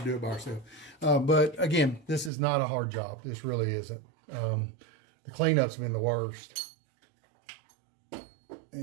do it by ourselves. But again, this is not a hard job. This really isn't. The cleanup's been the worst.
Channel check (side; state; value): left; drops out; at 2.3 s